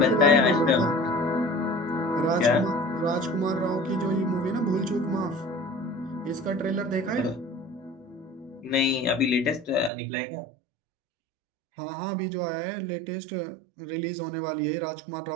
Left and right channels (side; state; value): left; drops out; at 9.9 s